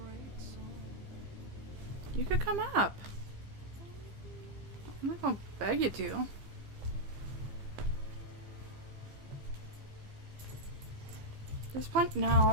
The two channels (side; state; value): left; late; 15 ms